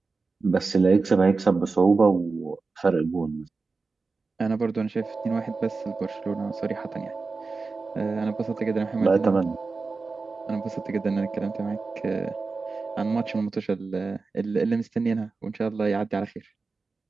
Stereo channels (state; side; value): quieter; left; 4.1 dB